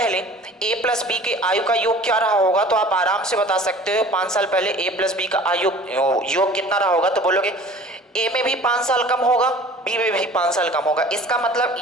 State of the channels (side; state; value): both; normal; correlation 0.45